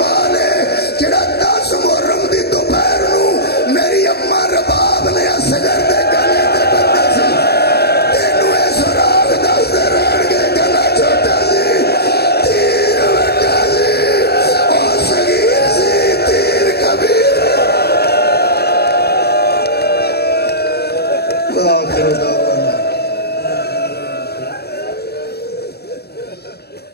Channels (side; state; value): right; late; 0.47 ms